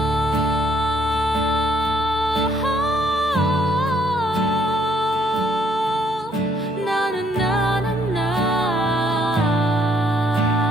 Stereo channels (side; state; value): both; normal; correlation 0.67